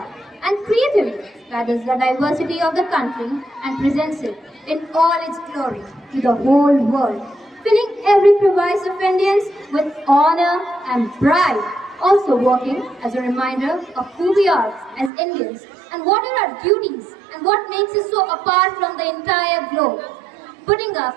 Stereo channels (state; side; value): drops out; left; at 15.1 s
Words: and creatively gathers the diversity of the country and presents it in all its glory to the whole world, filling every crevice of Indians with honor and pride, also working as a reminder of who we are as Indians and what are our duties and what makes us so apart from the entire globe, putting up